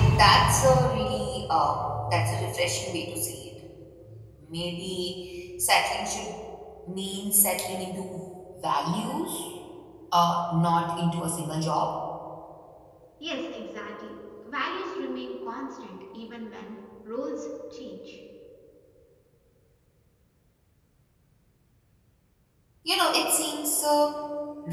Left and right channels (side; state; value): both; identical; correlation 1.00